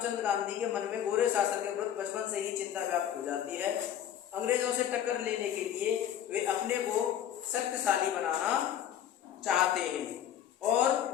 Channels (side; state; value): right; quieter; 10.2 dB